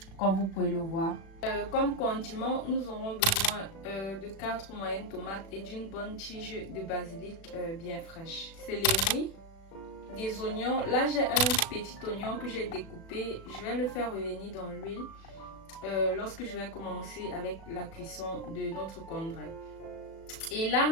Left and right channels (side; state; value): right; late; 36 ms